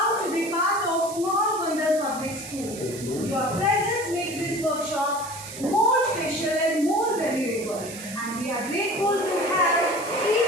to be part of Small Bandar Public School. Your presence makes this workshop more special and more valuable. And we are grateful to have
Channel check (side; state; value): right; noise; hiss, 12 dB below the sound